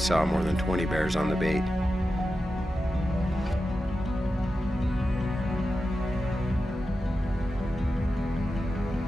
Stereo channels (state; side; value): normal; both; correlation 0.91